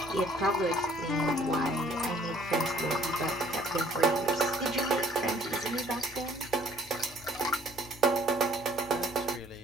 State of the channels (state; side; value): normal; both; correlation 0.60